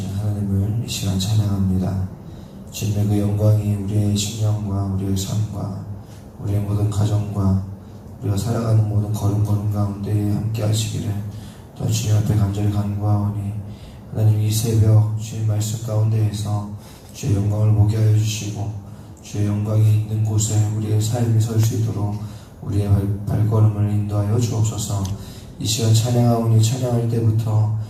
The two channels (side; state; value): both; identical; correlation 1.00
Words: 하나님을 이 시간 찬양합니다. 주님의 그 영광이 우리의 심령과 우리의 삶과 우리의 모든 가정과 우리가 살아가는 모든 걸음 가운데 함께 하시기를 또한 주님 앞에 간절히 간구하오니 하나님 이 새벽 주님 말씀 가운데에서 주의 영광을 보게 하여 주시고 주의 영광이 있는 곳에 우리의 삶이 설 수 있도록 우리의 발걸음을 인도하여 주옵소서. 이 시간 찬양하오니 찬양할 때부터